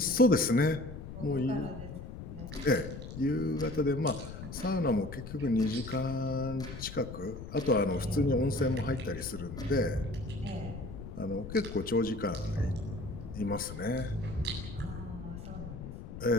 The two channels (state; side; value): noise; left; rumble, 10 dB below the sound